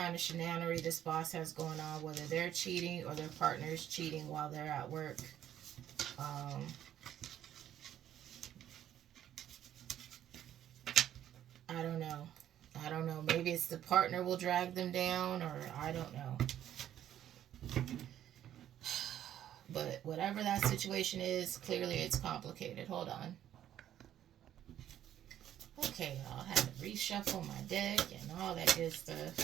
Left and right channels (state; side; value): quieter; left; 11.2 dB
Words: of shenanery this boss has going on, whether they're cheating or their partner's cheating while they're at work, I don't know. I don't know. Maybe it's the partner will drag them down, or I don't know. But whatever that situation is, clearly it's complicated. Hold on. Okay, I'll have to reshuffle my deck and all that good